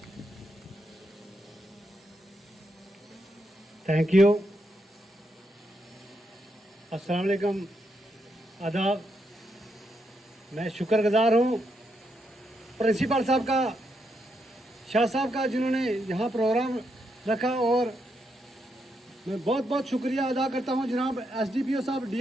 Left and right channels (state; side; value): normal; both; correlation 0.81